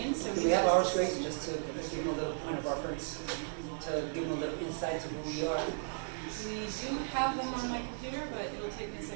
So Do we have our screens just to give them a little point of reference, to give them a little insight to who we are? We do have them on my computer, but it'll take me a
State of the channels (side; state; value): left; silent; digital silence